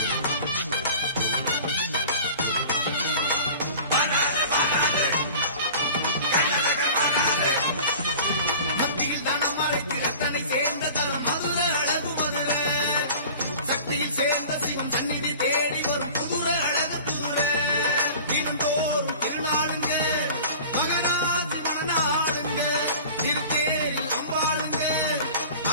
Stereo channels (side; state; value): both; inverted; correlation -0.41